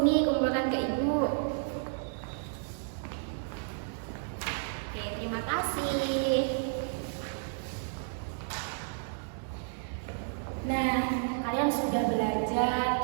kumpulkan ke Ibu. Oke, terima kasih. Nah, kalian sudah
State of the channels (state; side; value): silent; left; digital silence